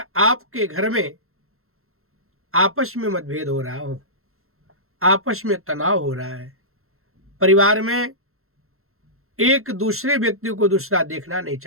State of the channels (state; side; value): late; left; 0.62 ms